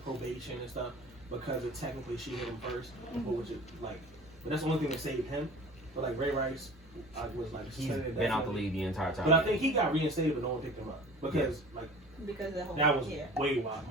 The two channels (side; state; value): both; normal; correlation 0.42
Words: probation and stuff because it technically she hit him 1st, which is like, but that's the only thing that saved him. But like Ray Rice, was like He's suspended been out the indefinitely. league the entire time. But I think he got reinstated, but no one picked him up because like Because the whole that was yeah. way wild,